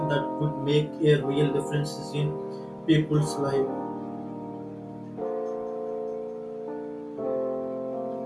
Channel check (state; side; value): identical; both; correlation 1.00